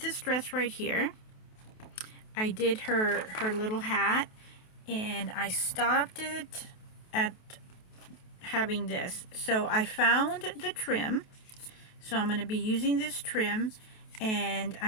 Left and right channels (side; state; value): right; late; 28 ms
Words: dress right here. I did her little hat, and I stopped it at having this. So I found the trim. So I'm going to be using this trim, and